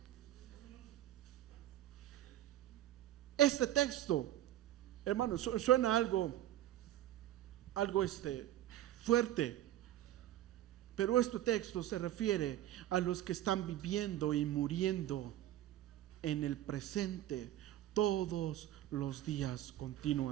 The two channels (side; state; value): left; quieter; 13.2 dB